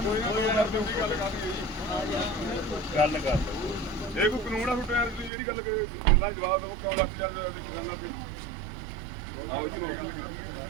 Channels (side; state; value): left; drops out; at 5.3 s